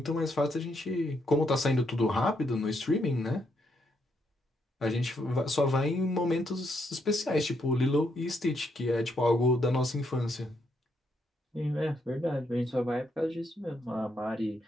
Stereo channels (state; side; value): normal; both; correlation 0.77